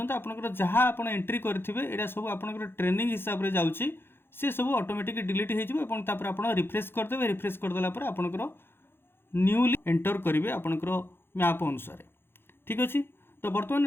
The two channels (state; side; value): late; right; 0.11 ms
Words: आपनकर जहाँ आपण एंट्री करथिबे एडा सब आपनकर ट्रेनिंग हिसाब रे जाउची से सब ऑटोमेटिक डिलीट हो जिवो एवं तापर आपण रिफ्रेश कर देबे रिफ्रेश कर देला पर आपनकर न्यूली एंटर करिवे आपनकर मैप अनुसार ठीक अछि। तो वर्तमान